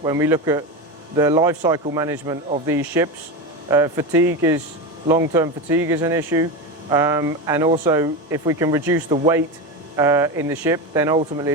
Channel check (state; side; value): normal; both; correlation 0.19